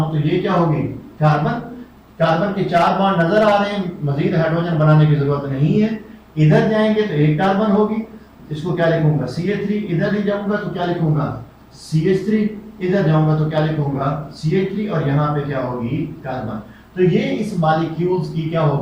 तो ये क्या होगी, कार्बन, कार्बन के 4 बॉन्ड नजर आ रहे हैं, मजीद हाइड्रोजन बनाने की जरूरत नहीं है। इधर जाएंगे तो एक कार्बन होगी, इसको क्या लिखूंगा, CH3। इधर ही जाऊंगा तो क्या लिखूंगा, CH3। इधर जाऊंगा तो क्या लिखूंगा, CH3, और यहाँ पे क्या होगी, कार्बन। तो ये इस मॉलिक्यूल्स की क्या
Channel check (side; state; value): both; identical; correlation 1.00